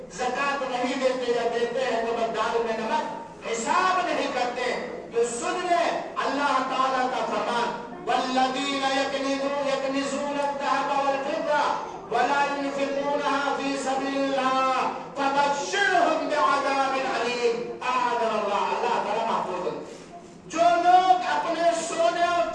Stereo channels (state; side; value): identical; both; correlation 1.00